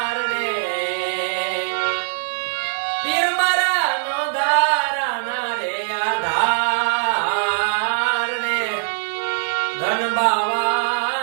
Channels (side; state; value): left; silent; digital silence